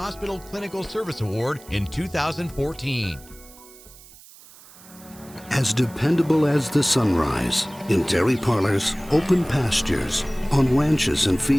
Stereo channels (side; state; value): right; noise; hiss, 22 dB below the sound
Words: Clinical Service Award in 2014. As dependable as the sunrise, in dairy parlors, open pastures, on ranches and